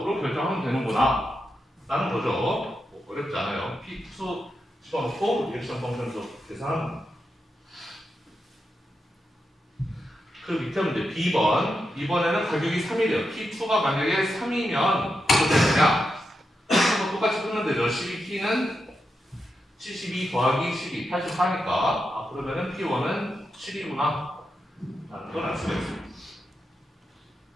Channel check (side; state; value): both; normal; correlation 0.87